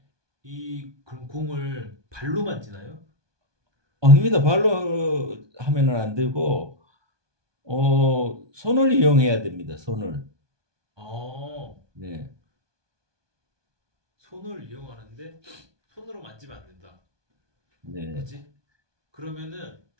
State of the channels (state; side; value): late; left; 1.2 ms